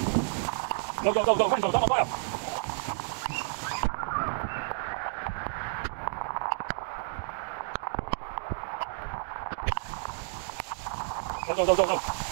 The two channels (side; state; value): left; silent; digital silence